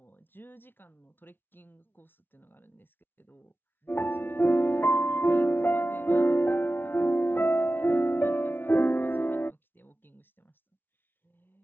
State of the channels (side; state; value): right; late; 0.10 ms